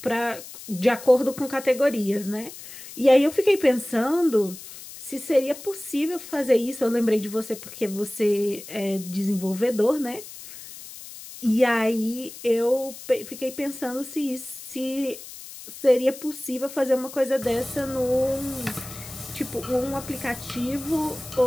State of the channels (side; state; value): left; noise; hiss, 14 dB below the sound